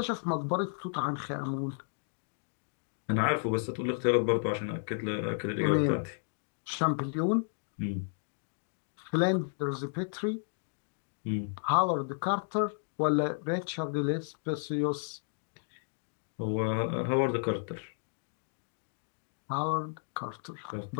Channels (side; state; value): right; silent; digital silence